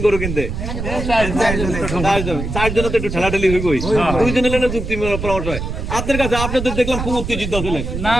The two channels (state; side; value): noise; right; rumble, 5 dB below the sound